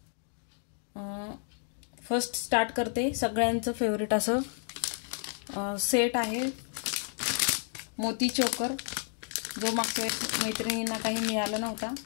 फर्स्ट स्टार्ट करते. सगळ्यांचं फेवरेट असं सेट आहे मोती चोकर, जो मागच्या मैत्रिणींना काही मिळालं नव्हता,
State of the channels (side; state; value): right; silent; 57 dB below the other